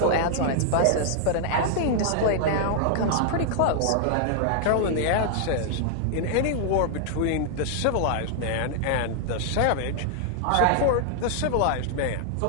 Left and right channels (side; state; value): both; different; correlation -0.01